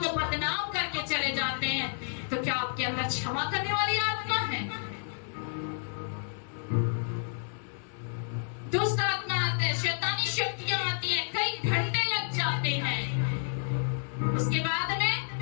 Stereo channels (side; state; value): right; silent; digital silence